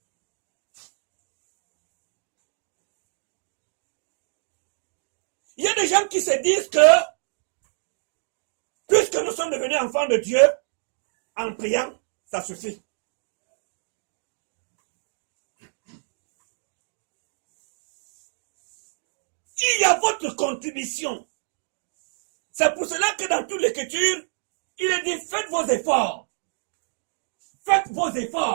Il y a des gens qui se disent que, puisque nous sommes devenus enfants de Dieu, en priant, ça suffit. Il y a votre contribution. C'est pour cela que dans toute l'écriture, il est dit, faites vos efforts. Faites vos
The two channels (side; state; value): left; silent; digital silence